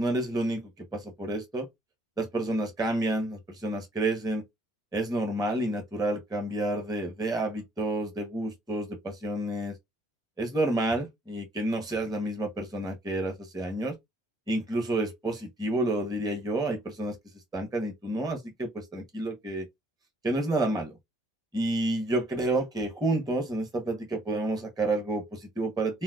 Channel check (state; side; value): normal; both; correlation 0.64